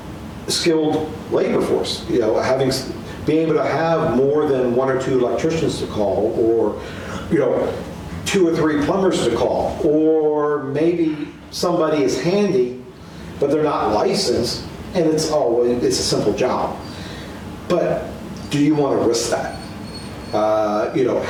skilled labor force. Being able to have more than one or two electricians to call, or two or three plumbers to call, or maybe somebody is handy, but they're not licensed, and it's a simple job. But do you want to risk that?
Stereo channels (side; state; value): both; identical; correlation 1.00